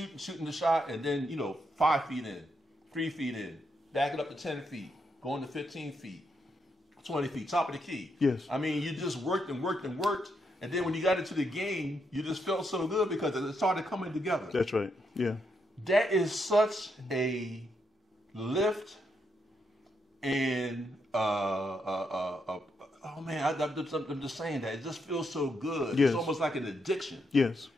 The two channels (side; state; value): both; normal; correlation 0.80